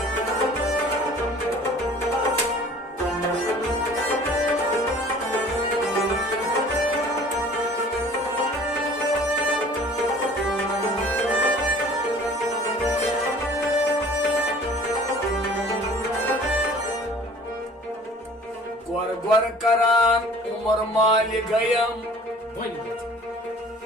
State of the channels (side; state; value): both; normal; correlation 0.49